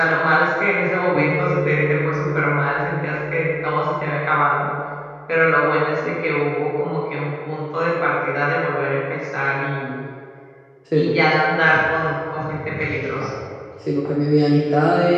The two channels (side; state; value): both; identical; correlation 1.00